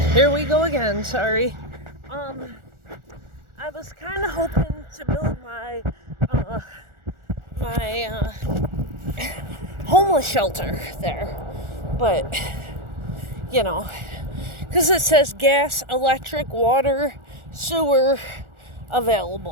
here we go again, sorry. I was kind of hoping to build my homeless shelter there, but because it says gas, electric, water, sewer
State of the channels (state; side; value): late; left; 1.4 ms